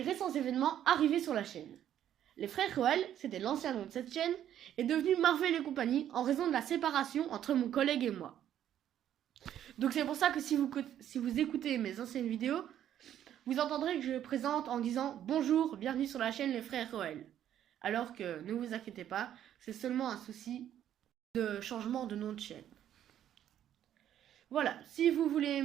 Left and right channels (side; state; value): left; quieter; 10.8 dB